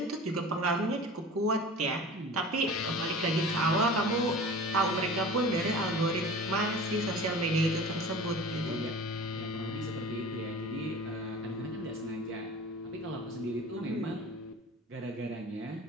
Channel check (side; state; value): both; normal; correlation 0.39